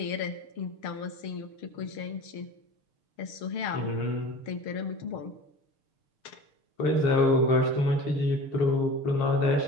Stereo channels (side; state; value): right; late; 6.6 ms